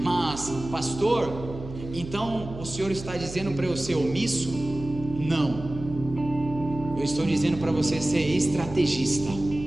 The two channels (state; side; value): noise; right; hum, 12 dB below the sound